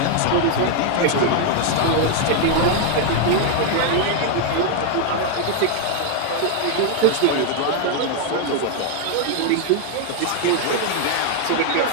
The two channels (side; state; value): both; different; correlation 0.00